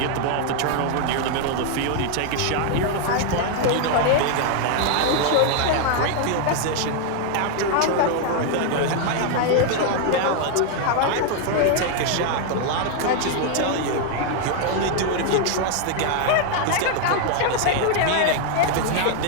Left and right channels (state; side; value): different; both; correlation 0.00